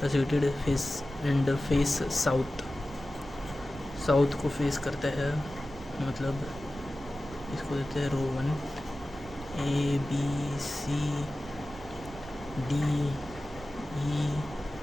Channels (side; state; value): both; normal; correlation 0.95